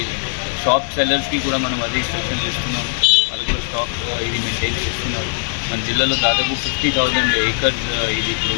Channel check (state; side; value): silent; right; digital silence